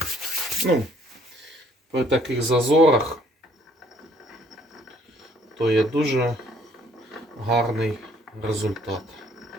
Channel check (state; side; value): normal; both; correlation 0.62